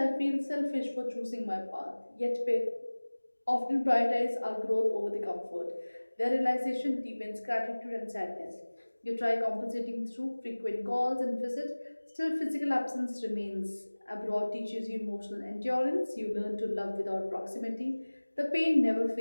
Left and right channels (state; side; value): inverted; both; correlation -1.00